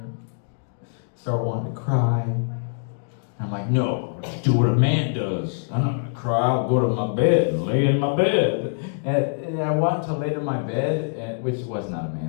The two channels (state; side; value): silent; right; digital silence